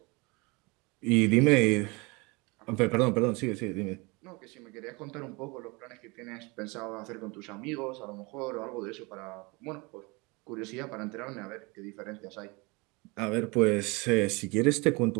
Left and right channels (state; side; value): quieter; left; 27.1 dB